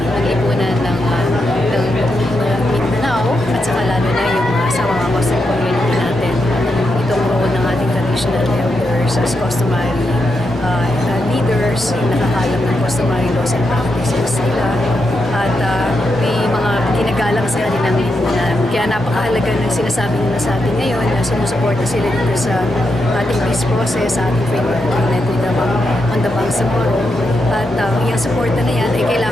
lipunan ng Mindanao, at saka lalo na yung sa mga Muslim community natin. Itong role ng ating traditional elders as customary leaders, nakakalam ng customary laws and practices nila, at may mga ginagalang sa kanilang lipunan. Kaya napakahalaga ng sinasabi nila sa atin ngayon na sumusuporta sila dito sa ating peace process, sa ating framework agreement with on the Bangsamoro. At yung suporta na yan ay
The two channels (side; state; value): both; normal; correlation 0.84